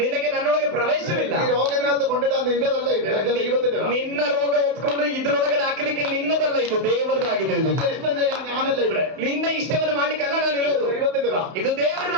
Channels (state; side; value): late; left; 32 ms